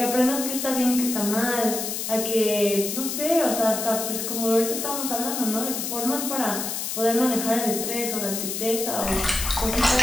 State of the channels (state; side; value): noise; left; hiss, 3 dB below the sound